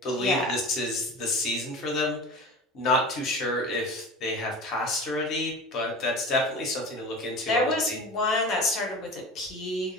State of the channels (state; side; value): normal; both; correlation 0.33